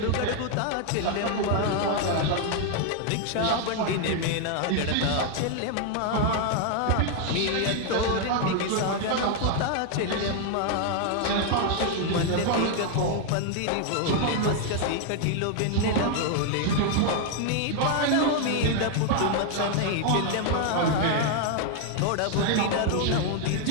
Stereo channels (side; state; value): both; different; correlation 0.00